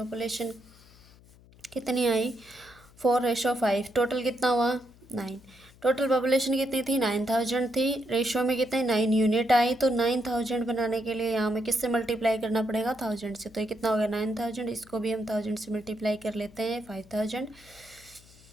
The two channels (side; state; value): left; noise; hum, 25 dB below the sound